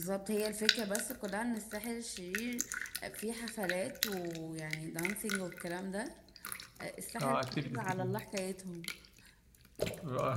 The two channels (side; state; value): both; identical; correlation 1.00